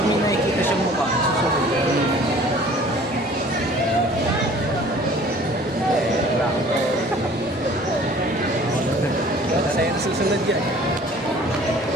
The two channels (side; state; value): both; normal; correlation 0.50